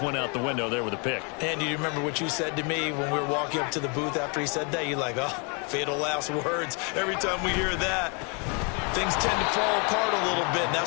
went out the window there with a pick. And do you remember what you said to me when we were walking up to the booth after he said that? You're like, oh, fatal last words. Every time we hear that, things tend to fall apart a little bit, and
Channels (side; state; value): right; quieter; 34.4 dB